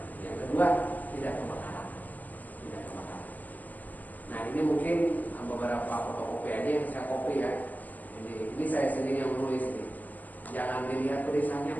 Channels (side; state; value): right; late; 0.081 ms